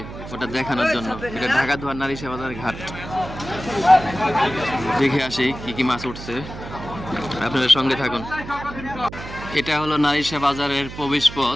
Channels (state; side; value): noise; right; hum, 12 dB below the sound